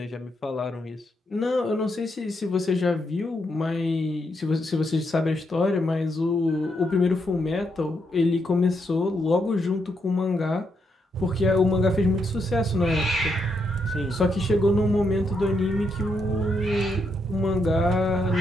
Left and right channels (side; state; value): both; normal; correlation 0.79